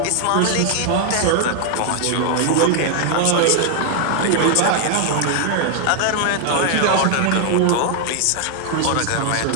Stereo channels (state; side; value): different; both; correlation 0.00